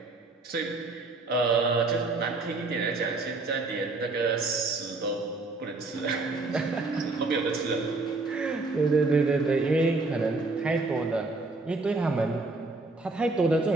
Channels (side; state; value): left; quieter; 3.4 dB